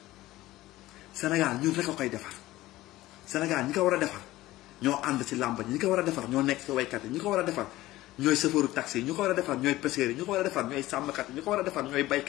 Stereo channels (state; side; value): quieter; right; 16.8 dB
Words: Sénégal ñun rek a koy defar Sénégal ñi ko war a defar ñoo ànd ci làmb ñi ko war a defar ñoo nekk ci waykat yi ñi ko war a defar ñooy chauffeuru taxi yi ñi ko war a defar ñooy pêcheurs yi ñi ko war a defar ñooy sàmmkat yi ñi ko war a defar ñooy